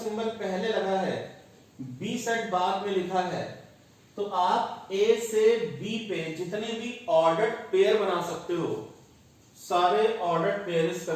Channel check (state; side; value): identical; both; correlation 1.00